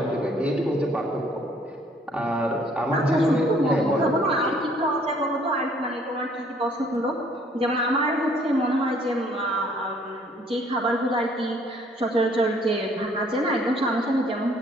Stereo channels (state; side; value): normal; both; correlation 0.61